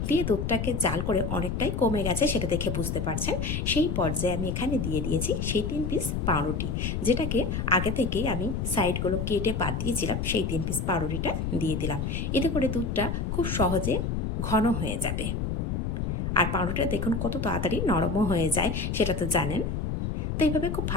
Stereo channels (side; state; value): left; noise; rumble, 1 dB below the sound